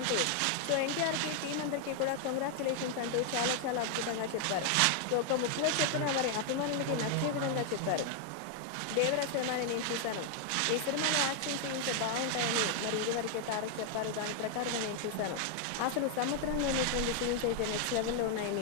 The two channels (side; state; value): both; different; correlation 0.00